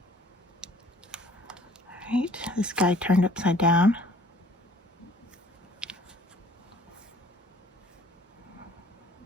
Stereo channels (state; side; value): normal; both; correlation 0.56